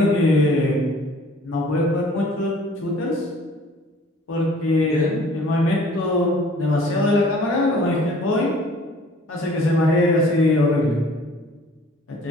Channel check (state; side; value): normal; both; correlation 0.52